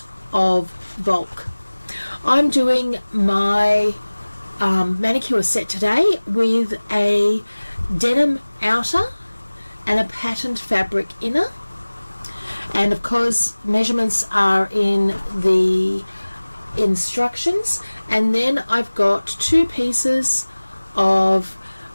of bulk. I'm doing my manicure set today with a denim outer and a patterned fabric inner, and of course measurements are in the instructions. And then I've got 2 pieces of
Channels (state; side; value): inverted; both; correlation -1.00